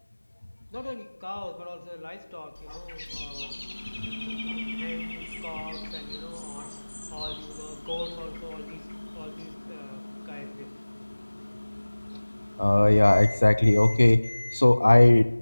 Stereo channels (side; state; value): both; inverted; correlation -1.00